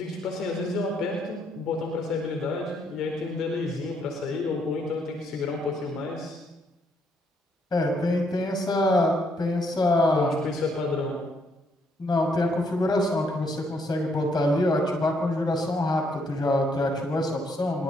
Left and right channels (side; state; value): both; normal; correlation 0.72